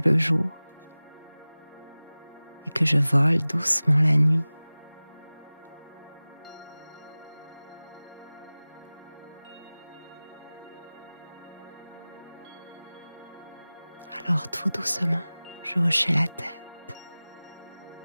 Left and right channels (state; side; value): inverted; both; correlation -0.99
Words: jour et que je vole doucement la nuit? Alors tout doucement, je hochai la tête.